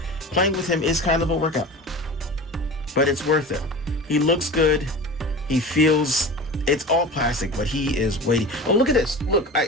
playing with him is kind of a workout, but it's worth it. He looks good. He feels, it's all plastic, but he is weighty. Oh, look at this. Look,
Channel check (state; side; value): normal; both; correlation 0.34